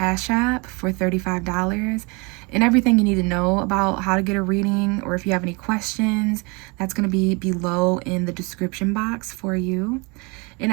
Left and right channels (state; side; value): quieter; left; 28.8 dB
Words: App for $35. And everything you need to know about how to get a reading, or if you have any questions, that's going to be below in the description box for you. And